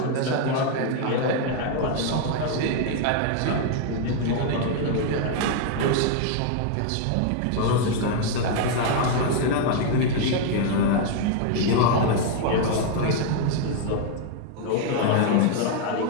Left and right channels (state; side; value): different; both; correlation 0.00